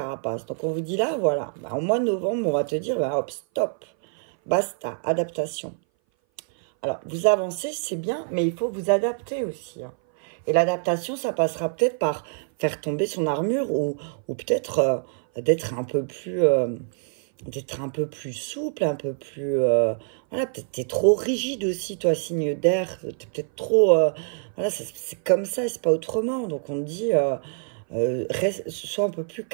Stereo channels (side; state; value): left; silent; 59 dB below the other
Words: Donc on vous dit là, voilà, au mois de novembre, on va te dire, hop, stop, basta, adaptation. Alors, vous avancez, c'est bien, mais il faut vous adapter aussi, hein. Et l'adaptation, ça passera peut-être par faire tomber son armure ou peut-être d'être un peu plus souple, un peu plus... voilà, peut-être t'es trop rigide aussi, toi, signe d'air. T'es peut-être trop... voilà, c'est comme ça, c'est pas autrement. Donc, on te dit, sois un peu plus